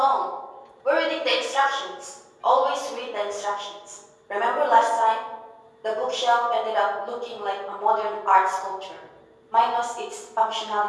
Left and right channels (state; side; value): identical; both; correlation 1.00